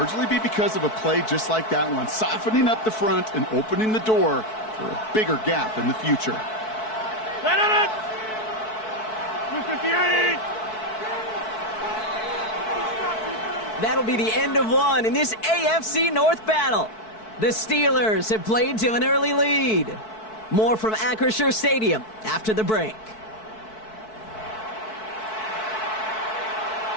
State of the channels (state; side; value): late; right; 4.6 ms